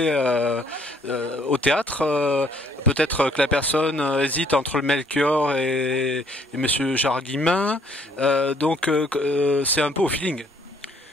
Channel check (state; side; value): normal; both; correlation 0.64